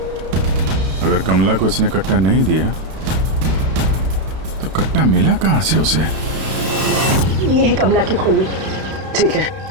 अगर कमला को इसने कट्टा नहीं दिया तो कट्टा मिला कहाँ से उसे? ये है कमला की खोली। ठीक है,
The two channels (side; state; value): left; late; 32 ms